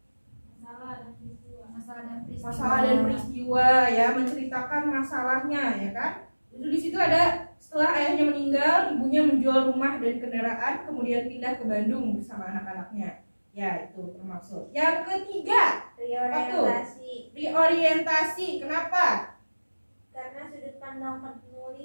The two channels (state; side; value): inverted; both; correlation -1.00